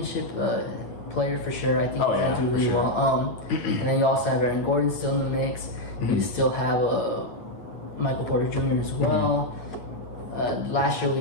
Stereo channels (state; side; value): late; right; 8.7 ms